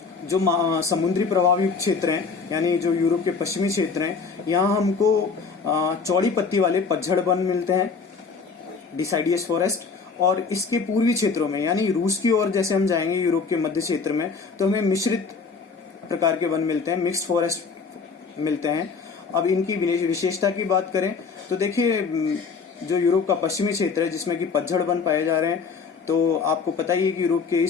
जो समुद्री प्रभावी क्षेत्र हैं, यानी जो यूरोप के पश्चिमी क्षेत्र हैं, यहाँ हमको चौड़ी पत्ती वाले पतझड़ वन मिलते हैं, डिसाइडियस फॉरेस्ट। और इसके पूर्वी क्षेत्रों में, यानी रूस की ओर जैसे हम जाएंगे यूरोप के मध्य क्षेत्र में, तो हमें मिश्रित प्रकार के वन मिलते हैं, मिक्स्ड फॉरेस्ट मिलते हैं। अब इनकी विशेषता की बात करें तो देखिए, जो यूरोप का पश्चिमी क्षेत्र है जिसमें कि पतझड़ वन पाए जा रहे हैं, तो आपको पता ही है कि यूरोप के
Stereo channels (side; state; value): right; quieter; 5.1 dB